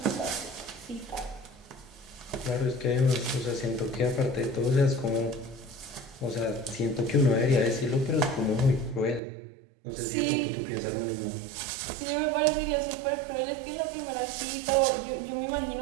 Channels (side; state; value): left; drops out; at 9.2 s